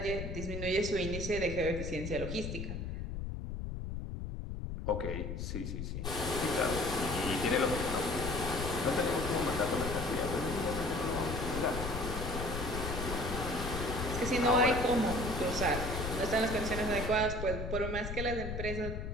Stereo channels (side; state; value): left; noise; rumble, 5 dB below the sound